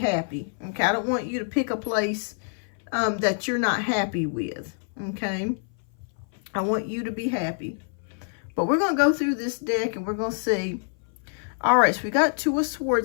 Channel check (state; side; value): silent; right; 57 dB below the other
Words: Okay, I don't want you to pick a place that you're not happy with. Okay, I want you to be happy. But we're going to go through this deck and we're going to see. All right, so we got Two of